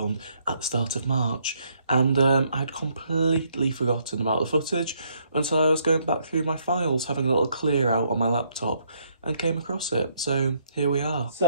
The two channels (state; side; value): inverted; both; correlation -0.70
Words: at the start of March, and I'd completely forgotten about the footage until I was going back through my files, having a little clear out on my laptop, and came across it. So here we are.